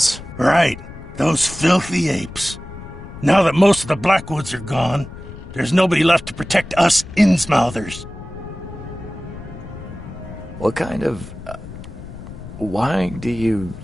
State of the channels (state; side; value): noise; left; rumble, 14 dB below the sound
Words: Right. Those filthy apes. Now that most of the Blackwoods are gone, there's nobody left to protect us Innsmouthers. What kind of... why do you...